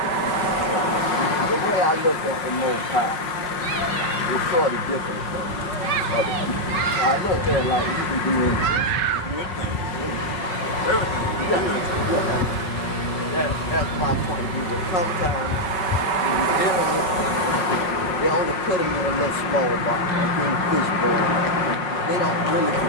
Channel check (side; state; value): right; late; 5.4 ms